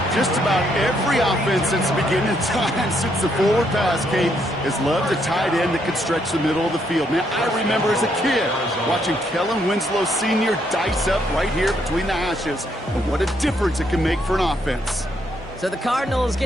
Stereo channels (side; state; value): both; normal; correlation 0.74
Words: Just about every offense since the beginning of time, since the forward pass, Kate, has loved a tight end that could stretch the middle of the field. Man, I remember as a kid watching Kellen Winslow Sr. dice up right here between the hashes. And what a difference it can make for an offense. So the Cardinals get